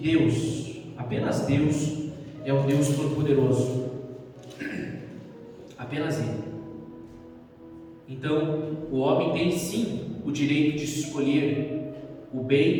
apenas Deus, é o Deus Todo-Poderoso, apenas Ele. Então, o homem tem sim o direito de escolher o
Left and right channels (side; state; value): both; identical; correlation 1.00